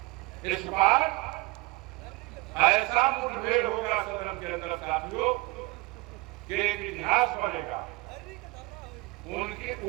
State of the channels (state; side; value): quieter; left; 22.6 dB